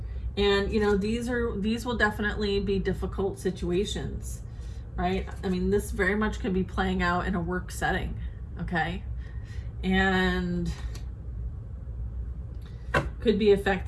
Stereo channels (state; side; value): identical; both; correlation 1.00